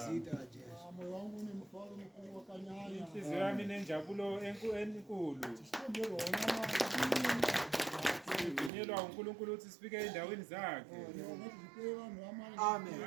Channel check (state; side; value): drops out; left; at 8.7 s